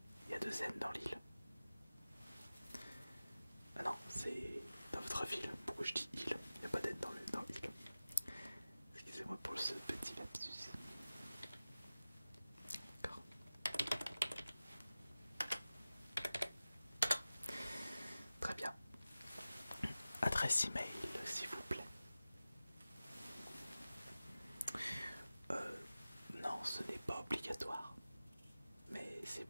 Il y a 2 N dans l'île. Ah non, c'est dans votre ville. Pourquoi je dis île? Il n'y a pas d'N dans l'île. Excusez-moi pour ce petit lapsus. D'accord. Très bien. Adresse email, s'il vous plaît. Non, ce n'est pas obligatoire. Mais c'est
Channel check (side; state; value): both; inverted; correlation -0.96